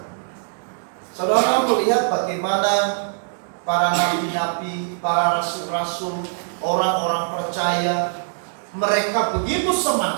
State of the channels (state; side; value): silent; left; digital silence